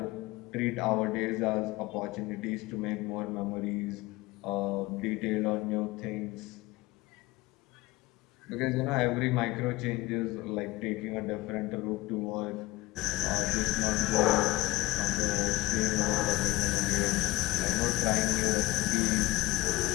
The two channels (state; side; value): quieter; right; 19.5 dB